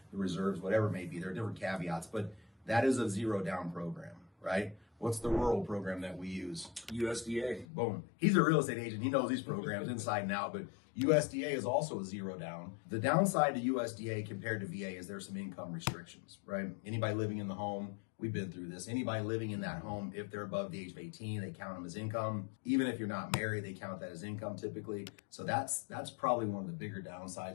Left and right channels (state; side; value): drops out; right; at 7.7 s